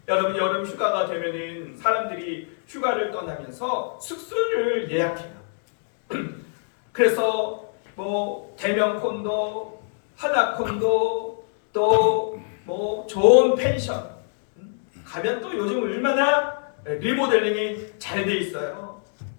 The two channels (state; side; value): silent; right; digital silence